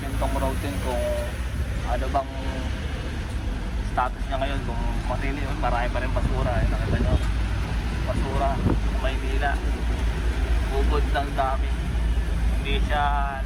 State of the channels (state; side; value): identical; both; correlation 1.00